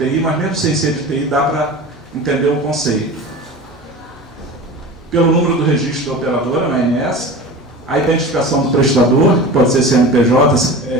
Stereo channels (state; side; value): normal; both; correlation 0.34